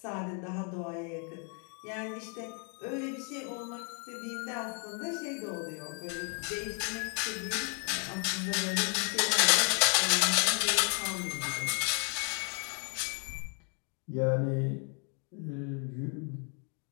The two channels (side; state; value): right; quieter; 39.2 dB